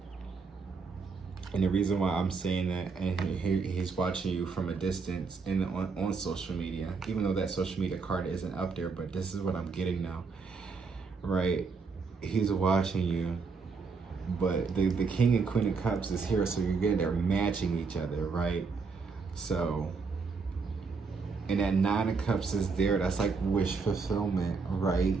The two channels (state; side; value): quieter; left; 4.8 dB